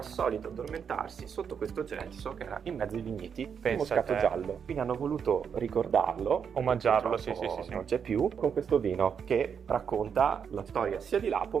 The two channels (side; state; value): left; quieter; 7.1 dB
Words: addormentarsi sotto questo gelso che era in mezzo ai vigneti di Pensa moscato te. giallo. Quindi hanno voluto ricordarlo, Omaggiarlo, perché sì, sì, sì. non c'è più, con questo vino che racconta la storia sia di Lapo